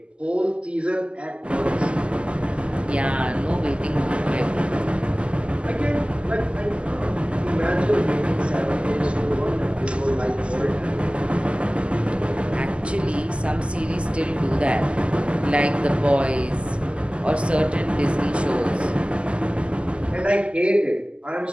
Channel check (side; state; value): left; late; 0.054 ms